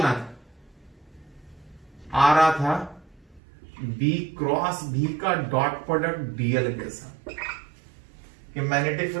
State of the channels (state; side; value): drops out; left; at 3.4 s